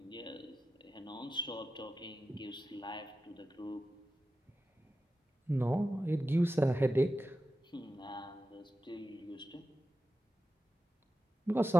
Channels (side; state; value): both; normal; correlation 0.92